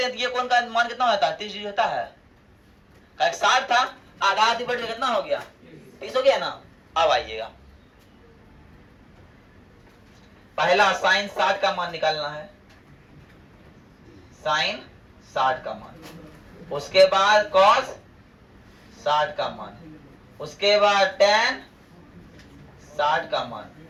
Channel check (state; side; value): identical; both; correlation 1.00